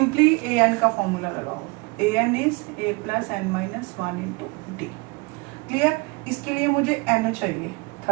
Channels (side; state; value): left; quieter; 27.5 dB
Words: AN का फॉर्मूला लगाओ, AN is A plus N minus 1 into D। Clear? इसके लिए मुझे N चाहिए,